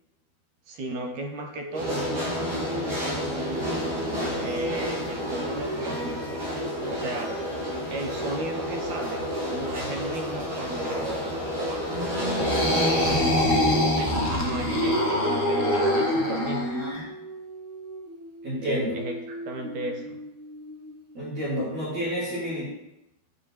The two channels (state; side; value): late; left; 12 ms